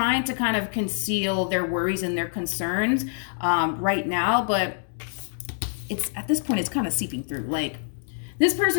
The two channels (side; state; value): right; silent; digital silence